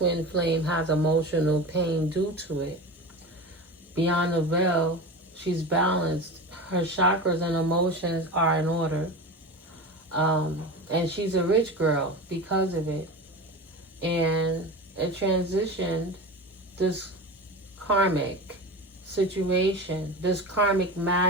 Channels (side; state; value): both; normal; correlation 0.29